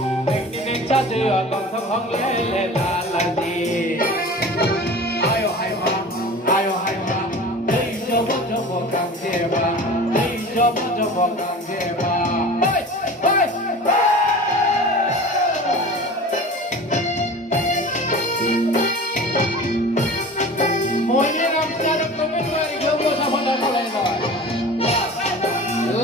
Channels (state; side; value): normal; both; correlation 0.38